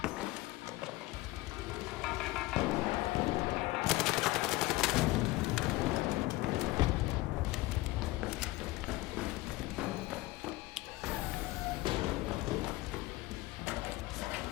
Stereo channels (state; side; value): quieter; right; 19.5 dB